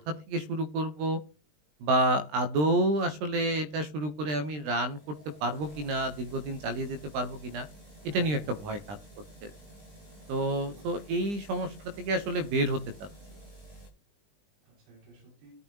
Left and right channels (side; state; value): left; late; 20 ms